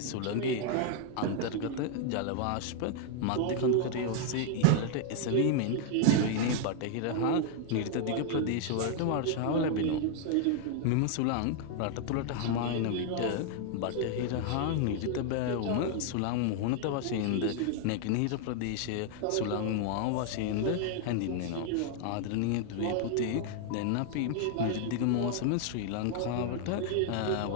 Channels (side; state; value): both; different; correlation 0.00